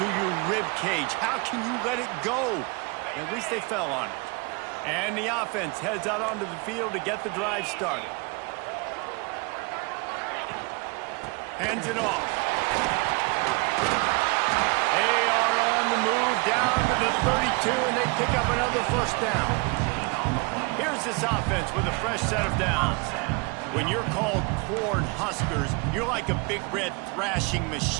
your rib cage. How can you let it go? At least they fell on it. And the offense heads out onto the field to get the drive started. Hands it off. They are on the move down to the 32, and they pick up another 1st down. Here's this offense with a fresh set of downs. When you're called corn huskers, you're like a big red thrashing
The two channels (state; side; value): quieter; left; 29.4 dB